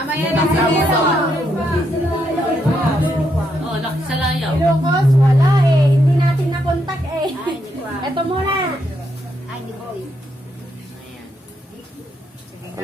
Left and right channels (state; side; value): normal; both; correlation 0.78